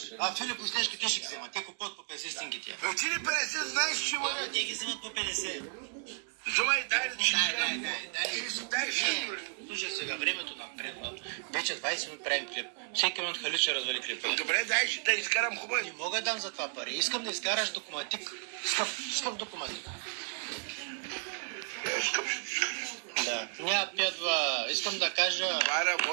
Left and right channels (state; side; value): silent; left; 56 dB below the other